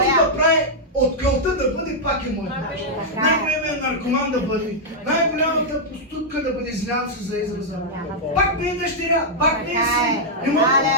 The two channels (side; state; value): both; normal; correlation -0.06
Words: алелуя. да прави от кълта да бъде, пак е моя. Най-големият наркоман да бъде, най-голямата проститутка да бъде, извинявам се за израза. Пак ми е дъщеря, пак ми е син. Не мога